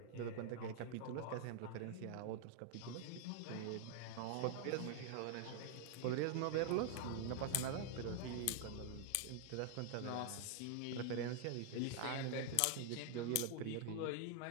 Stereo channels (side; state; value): both; different; correlation 0.00